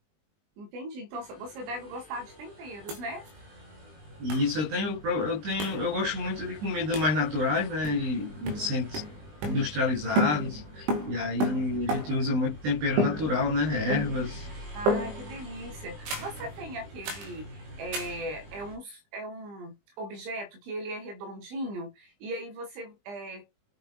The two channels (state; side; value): late; left; 20 ms